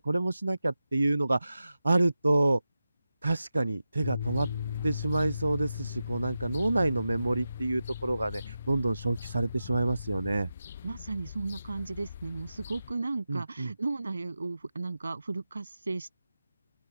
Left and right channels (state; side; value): inverted; both; correlation -0.92